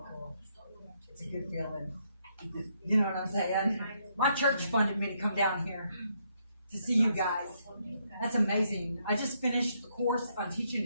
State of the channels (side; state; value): both; inverted; correlation -0.75